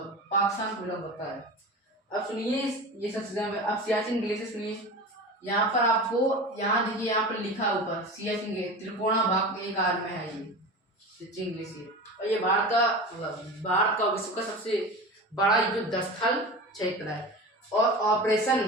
पाकिस्तान को बिलोंग करता है। अब सुनिए ये सब चीजें, अब सियाचिन ग्लेशियर सुनिए। यहाँ पर आपको यहाँ देखिए, यहाँ पर लिखा ऊपर सियाचिन ग्लेशियर त्रिकोणा भाग के आकार में है ये सियाचिन ग्लेशियर, और ये भारत का विश्व का सबसे बड़ा युद्ध स्थल क्षेत्र है। और ऑपरेशन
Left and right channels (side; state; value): both; normal; correlation 0.30